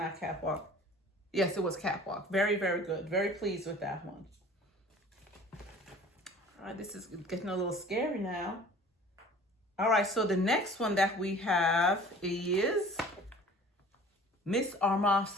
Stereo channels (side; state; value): both; normal; correlation 0.46